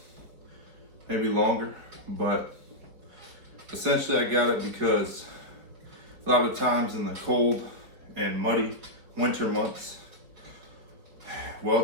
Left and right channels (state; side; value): late; left; 4.6 ms